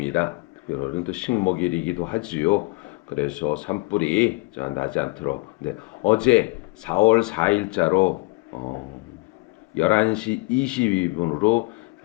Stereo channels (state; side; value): quieter; right; 26.1 dB